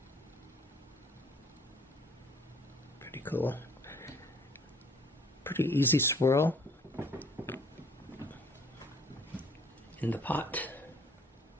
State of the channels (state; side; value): normal; both; correlation 0.58